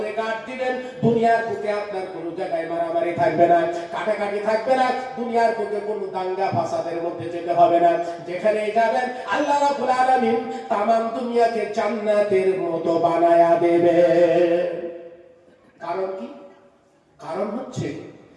গাঁট দিবেন। দুনিয়ার বুকে আপনার কোনো জায়গায় মারামারি থাকবে না, কাটাকাটি থাকবে না, দুনিয়ার বুকে কোনো দাঙ্গা ফাসাদের মধ্যে যেতে হবে না। যেখানেই যাবেন আল্লাহ রাব্বুল আলামিন তামাম দুনিয়াকে জান্নাতের মতো বানায়া দেবে। কারণ কি? কারণ হচ্ছে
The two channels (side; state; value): both; identical; correlation 1.00